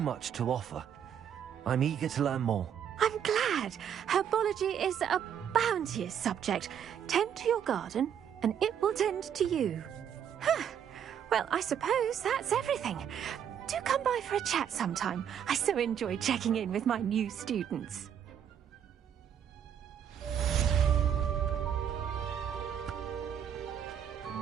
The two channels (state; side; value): quieter; left; 8.8 dB